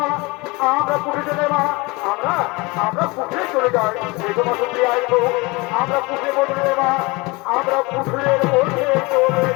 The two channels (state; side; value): quieter; right; 25.1 dB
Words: মা, আমরা পুজো চলে মা, আমরা পুকুরে চলে যাই। এই তোমার সত্যি আইবো, আমরা পুকুরে বদলে মা, আমরা পুকুরের মধ্যে চলে